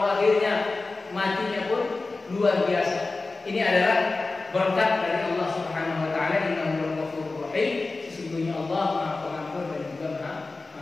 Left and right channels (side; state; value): right; quieter; 3.5 dB